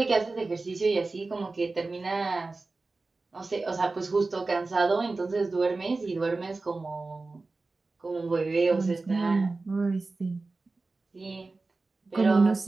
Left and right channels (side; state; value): left; quieter; 3.6 dB